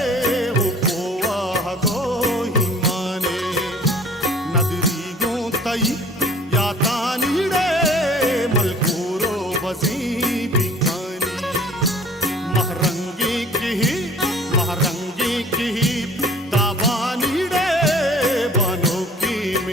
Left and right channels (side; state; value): both; normal; correlation 0.50